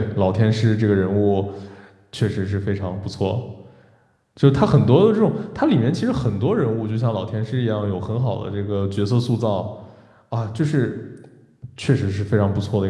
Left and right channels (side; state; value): both; identical; correlation 1.00